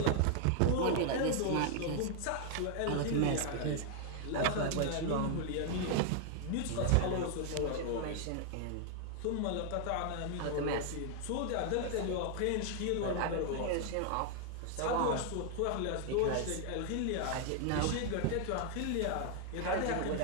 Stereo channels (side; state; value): both; different; correlation 0.00